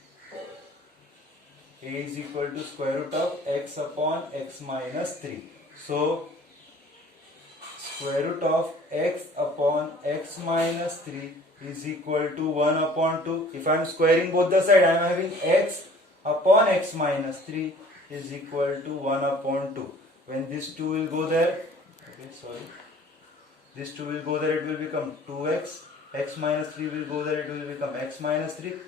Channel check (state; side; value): normal; both; correlation 0.50